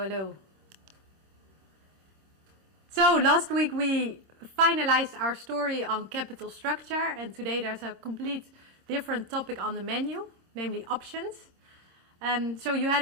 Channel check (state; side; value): late; left; 26 ms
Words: hello. So, last week we finalized our story on capital structure, and today there's a complete different topic on the menu, namely options. So you had